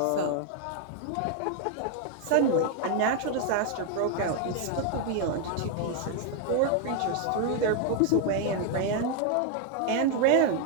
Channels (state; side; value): different; both; correlation 0.00